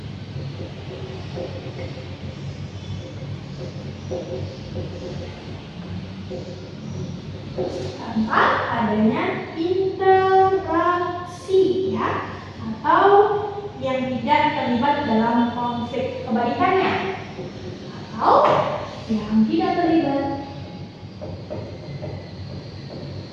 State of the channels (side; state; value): both; identical; correlation 1.00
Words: Tanpa adanya interaksi, ya, atau yang tidak terlibat dalam konflik. Kebalikannya, atau yang tidak terlibat